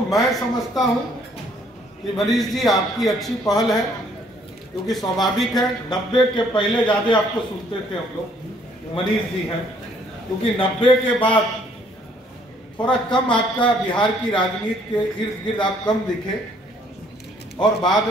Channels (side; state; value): both; normal; correlation 0.63